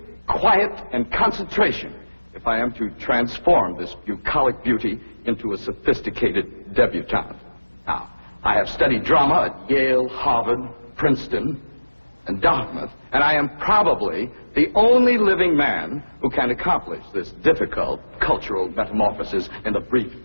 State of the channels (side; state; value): both; inverted; correlation -1.00